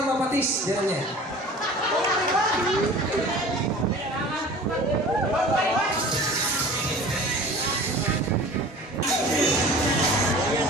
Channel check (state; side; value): normal; both; correlation 0.42